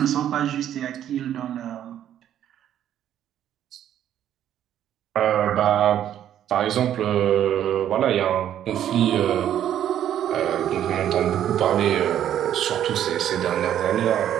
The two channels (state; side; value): quieter; left; 10.7 dB